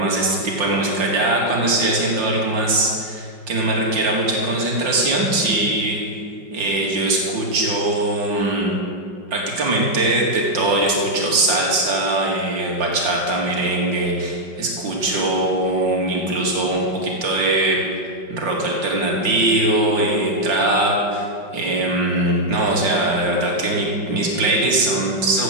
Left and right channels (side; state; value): left; late; 5.7 ms